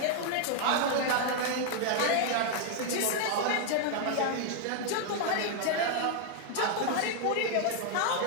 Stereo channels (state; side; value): different; both; correlation 0.00